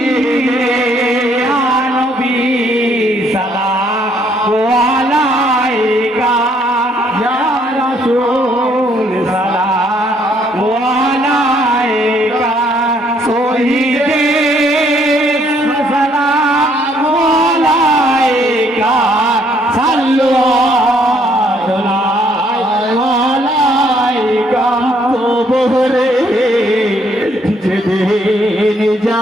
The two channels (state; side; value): normal; both; correlation 0.67